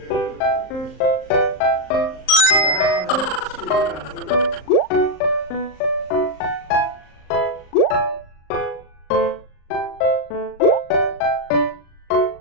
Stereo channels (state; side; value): late; right; 38 ms